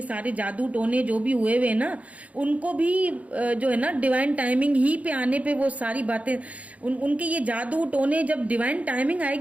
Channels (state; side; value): late; left; 0.068 ms